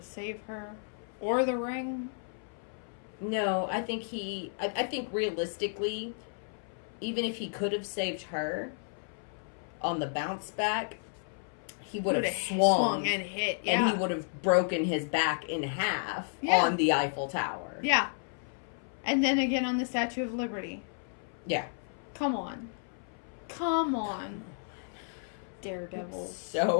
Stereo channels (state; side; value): silent; right; 56 dB below the other